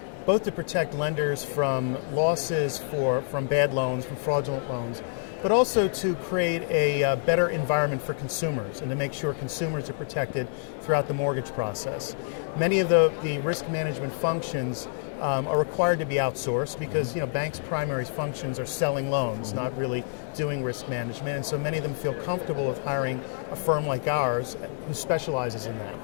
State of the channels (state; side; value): silent; right; digital silence